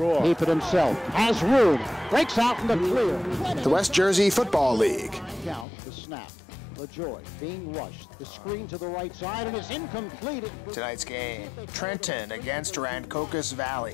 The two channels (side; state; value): right; drops out; at 5.7 s